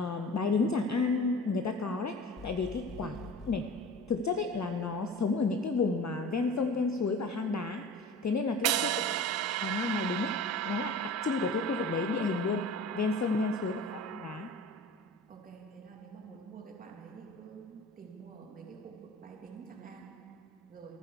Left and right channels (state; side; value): normal; both; correlation 0.38